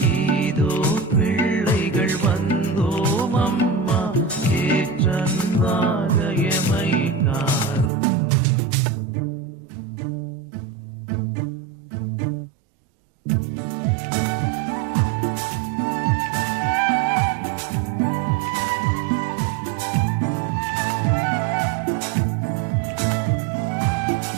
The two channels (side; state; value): left; drops out; at 7.9 s